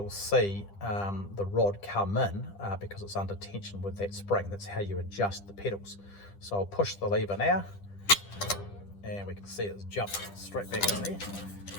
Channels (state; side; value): late; right; 10 ms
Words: see the rod come in because it's under tension with that spring. That's how you adjust the pedals. So I'll push the lever now, and we can see it's jumped straight back in there,